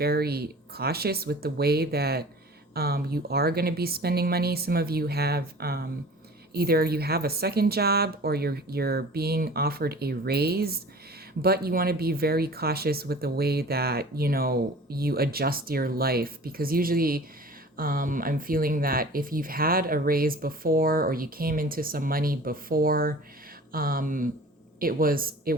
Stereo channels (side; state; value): both; normal; correlation 0.43